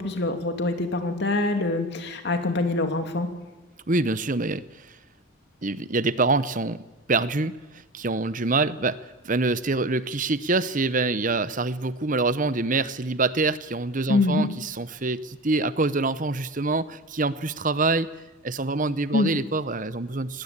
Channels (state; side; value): normal; both; correlation 0.30